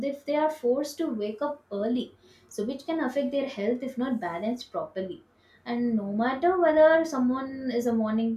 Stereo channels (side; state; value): both; identical; correlation 1.00